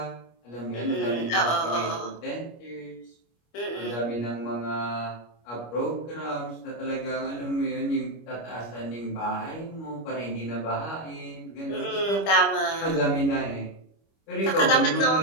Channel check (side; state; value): right; late; 25 ms